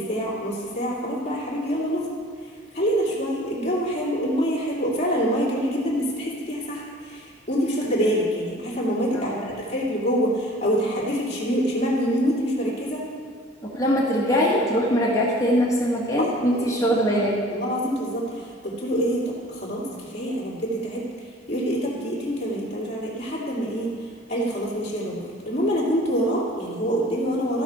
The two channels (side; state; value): both; normal; correlation 0.47